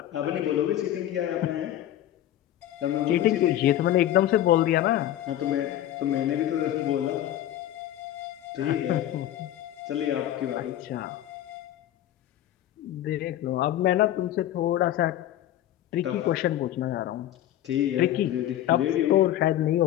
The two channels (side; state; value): right; quieter; 12.6 dB